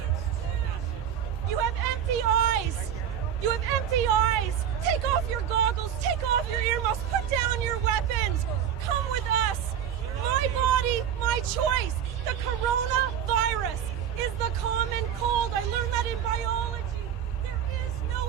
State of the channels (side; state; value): left; quieter; 9.2 dB